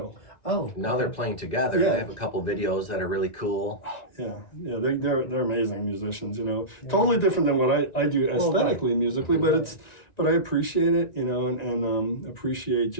Oh. Now they're playing together. Yeah. They have a couple videos that are really cool. Yeah, they're amazing musicians, Totally different than what I do aesthetically, musically, but I appreciate it, and appreciate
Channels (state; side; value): late; right; 1.9 ms